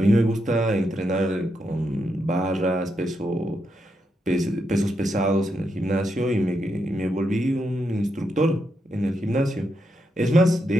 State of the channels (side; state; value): both; normal; correlation 0.82